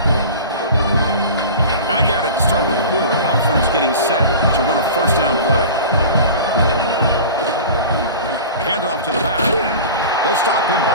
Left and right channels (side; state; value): both; inverted; correlation -0.36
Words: Back at it to start the quarter. Offense getting set to run a first down play. Handoff to the back. They'll stop him